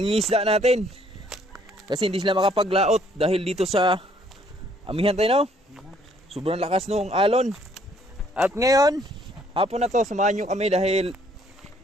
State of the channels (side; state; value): both; normal; correlation 0.64